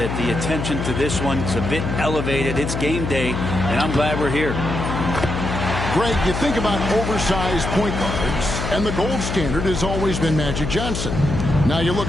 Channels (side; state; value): left; noise; hum, 3 dB below the sound